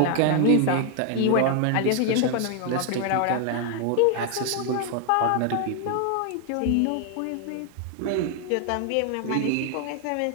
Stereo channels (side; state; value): both; different; correlation 0.00